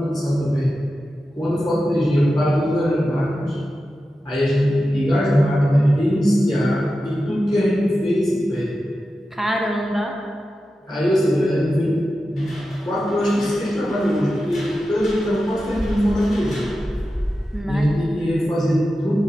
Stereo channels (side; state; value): both; normal; correlation 0.92